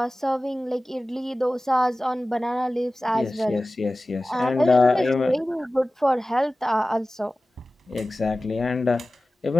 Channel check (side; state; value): both; normal; correlation 0.96